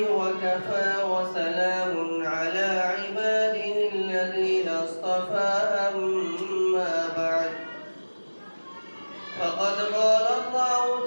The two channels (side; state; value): both; inverted; correlation -1.00